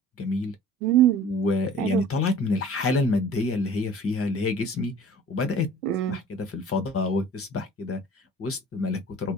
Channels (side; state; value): both; normal; correlation 0.46